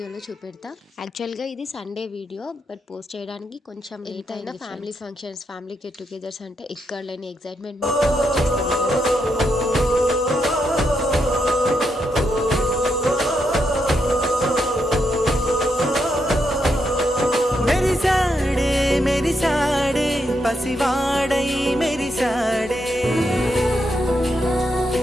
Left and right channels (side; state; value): both; normal; correlation 0.81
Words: చూపెడతా. యాక్చువల్గా ఇది సండే వీడియో, బట్ పోస్ట్ చేయడానికి కొంచెం లేట్ అయినా family functions, family get togethers అంటే ఇక్కడ లేని ఎగ్జైట్మెంట్ మెరిసాడే పసివాడై మెరిసాడే